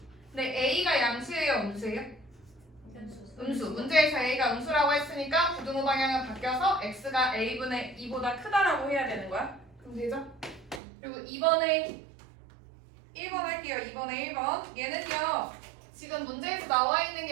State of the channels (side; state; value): left; drops out; at 10.8 s